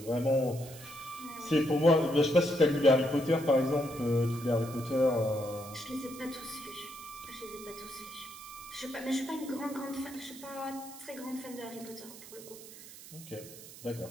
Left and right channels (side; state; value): right; noise; hiss, 16 dB below the sound